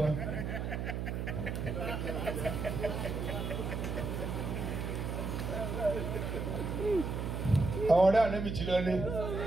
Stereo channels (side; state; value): right; noise; hum, 3 dB below the sound